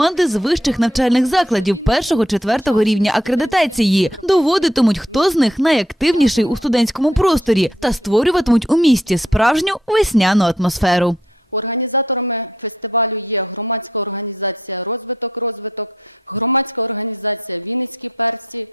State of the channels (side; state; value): both; normal; correlation 0.71